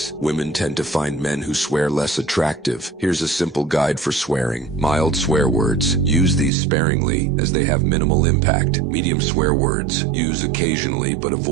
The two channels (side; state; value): left; drops out; at 6.5 s